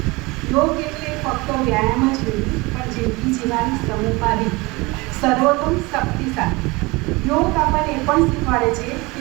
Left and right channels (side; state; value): left; quieter; 23.9 dB